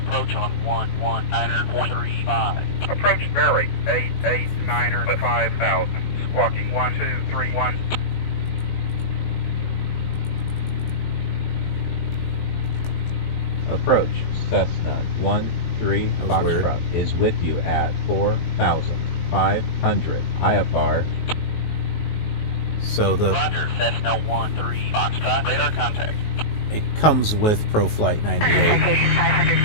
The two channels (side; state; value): right; late; 19 ms